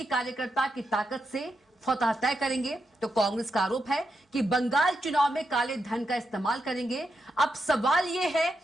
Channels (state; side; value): normal; both; correlation 0.85